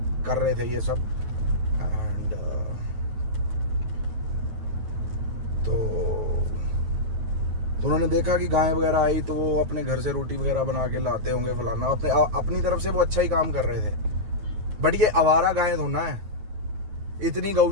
कर रहे थे ये सब। एंड तो उन्होंने देखा कि गाय वगैरह आई, तो वो अपने घर से रोटी वगैरह बना के लाते होंगे फलाना, अपनी तरफ से वो अच्छा ही काम कर रहे थे। बट ये आवारा गायें थोड़ा है। इतनी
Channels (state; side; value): late; left; 9.4 ms